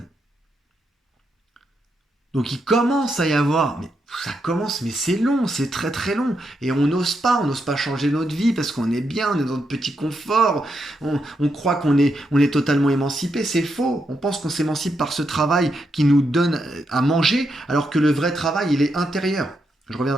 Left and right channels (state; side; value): normal; both; correlation 0.82